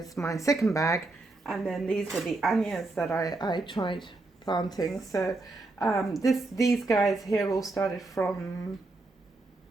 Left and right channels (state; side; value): quieter; left; 3.1 dB